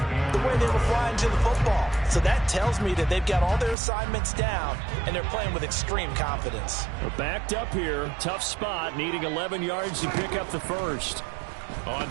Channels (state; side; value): drops out; left; at 3.8 s